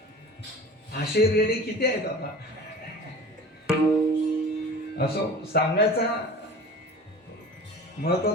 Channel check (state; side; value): normal; both; correlation 0.39